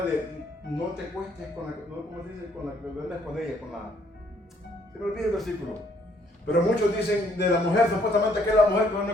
de no te cuestes con la, no, ¿cómo se dice? Con la que duermes con ella, con la... Se me olvida el versículo. Pero muchos dicen de la mujer, supuestamente que es la mujer que duerme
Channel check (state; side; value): normal; both; correlation 0.65